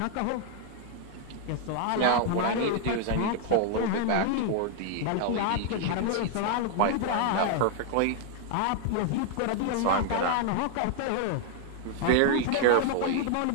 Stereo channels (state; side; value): different; both; correlation 0.00